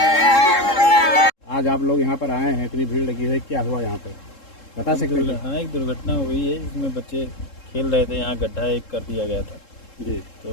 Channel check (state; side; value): late; right; 3.7 ms